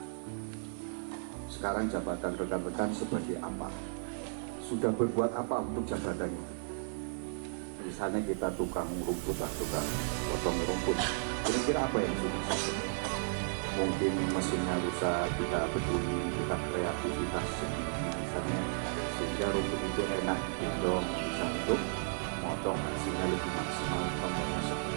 Sekarang jabatan rekan-rekan sebagai apa? Sudah berbuat apa untuk jabatan itu? Misalnya kita tukang rumput lah, tukang potong rumput. Kira-kira apa yang sudah selesai? Mungkin mesinnya rusak, kita peduli, kita kreativitas misalnya, sehingga rumput itu enak digendong, bisa untuk motong hasilnya lebih maksimal.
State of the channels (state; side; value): silent; left; digital silence